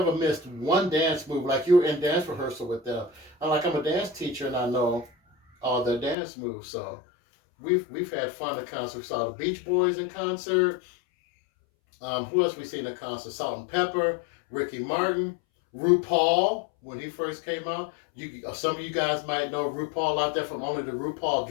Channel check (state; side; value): drops out; right; at 6.2 s